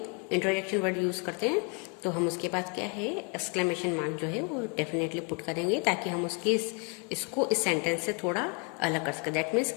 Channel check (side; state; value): right; quieter; 35.8 dB